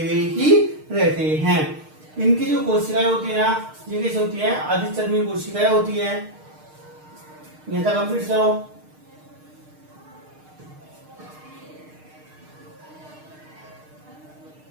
हुए ही रहते हैं। इनकी जो कोशिकाएं होती है ना, ये कैसे होती है, अधिचर्मी कोशिकाएं होती है। यहाँ तक कंप्लीट करो।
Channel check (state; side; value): late; left; 6.5 ms